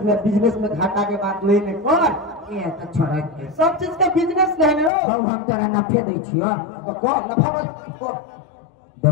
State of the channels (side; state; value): right; drops out; at 4.9 s